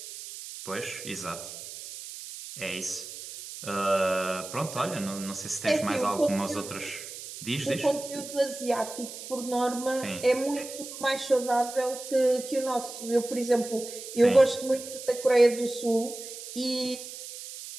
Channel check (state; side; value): noise; right; hiss, 11 dB below the sound